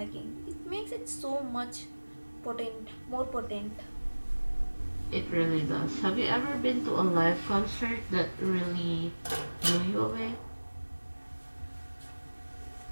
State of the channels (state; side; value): inverted; both; correlation -1.00